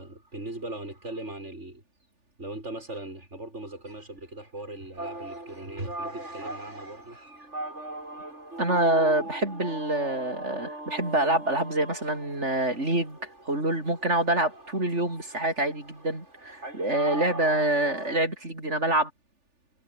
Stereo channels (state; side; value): late; left; 3.4 ms